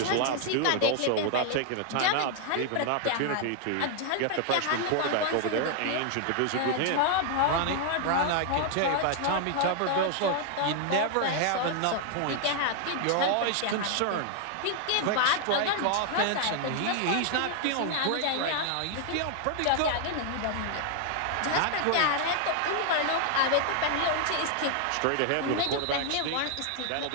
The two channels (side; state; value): both; different; correlation 0.00